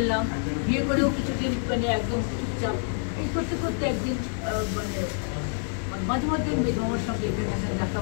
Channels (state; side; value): silent; right; 60 dB below the other